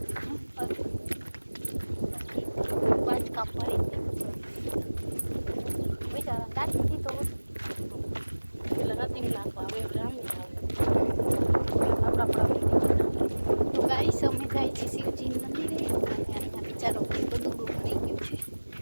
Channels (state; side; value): inverted; both; correlation -1.00